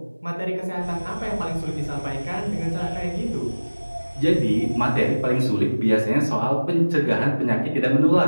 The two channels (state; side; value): inverted; both; correlation -1.00